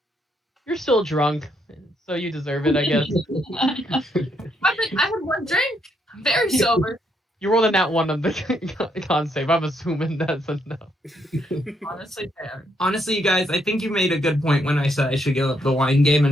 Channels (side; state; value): both; normal; correlation 0.75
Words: "You're still drunk, so you deserve it, I guess." I had 1 drink. I'm very sober. You rolled a nat 1 on the con save. I'm assuming that's a no. Honestly, fair. Honestly, you guys, I think you made a good point when I said I should give up the wine game